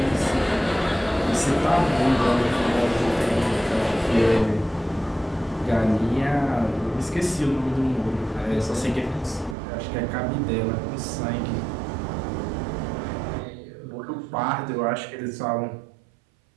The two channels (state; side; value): drops out; left; at 9.6 s